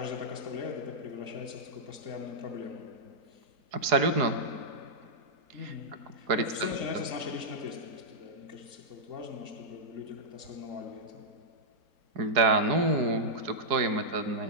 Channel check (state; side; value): late; left; 4.7 ms